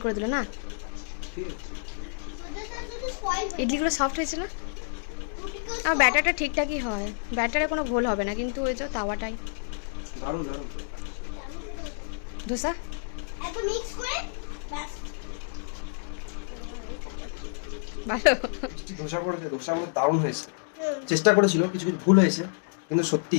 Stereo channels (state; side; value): silent; right; digital silence